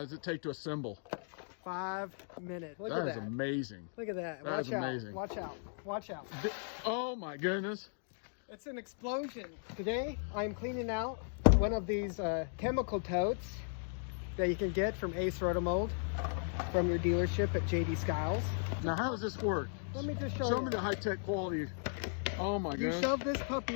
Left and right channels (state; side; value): silent; right; digital silence